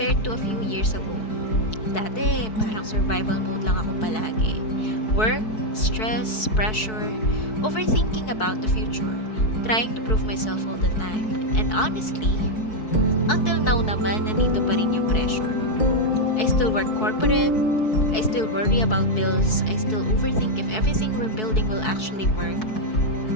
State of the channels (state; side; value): late; right; 4.6 ms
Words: to a few years ago. Dati, parang survival mode lang ako palagi. Work, stress, pressure, overthinking about the future, trying to prove myself all the time. And honestly, until now naman, nandito pa rin yung pressure. I still work corporate, I still worry about bills, I still overthink if everything we're building will actually work.